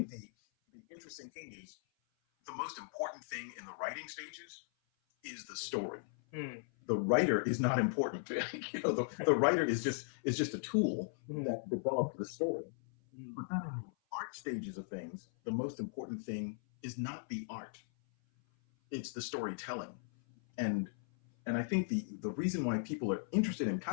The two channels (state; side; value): silent; right; 53 dB below the other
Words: the interesting thing is the most important thing in the writing stages is the story. The writer is not important. You know, the writer is just a tool that develops the story. But then in the art stages of things, the most important thing is not the art. It's the storytelling. And I think the reason why people are interested in